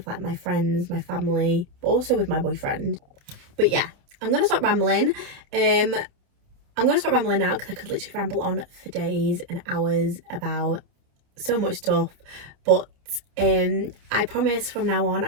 like my friends, my family, but also with my boyfriend. But yeah, I'm gonna stop rambling. I'm going to stop rambling now because I could literally ramble on for days and hours about so much stuff. But I promise from now on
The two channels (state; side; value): late; left; 29 ms